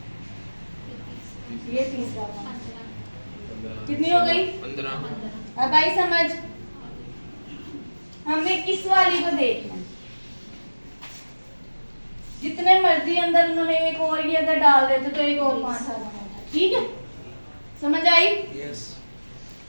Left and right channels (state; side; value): inverted; both; correlation -1.00